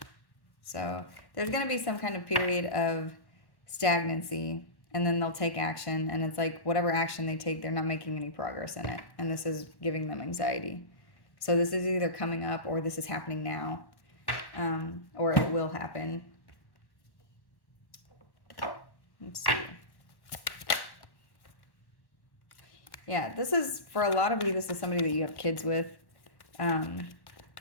So there's going to be some kind of period of stagnancy, and then they'll take action. And it's like whatever action they take, they're not making any progress in it. And this is giving them anxiety. So this is either coming up, or this is happening now, or it will happen. Let's see. Yeah, this is, for a lot of you, this is somebody that you have kids with.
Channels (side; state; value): right; late; 1.1 ms